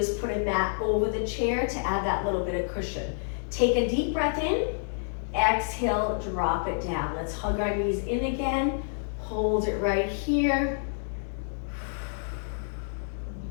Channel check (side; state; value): right; silent; digital silence